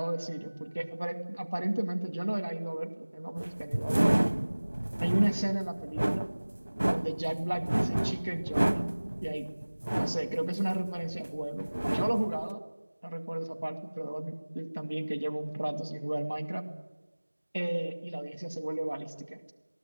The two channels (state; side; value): inverted; both; correlation -1.00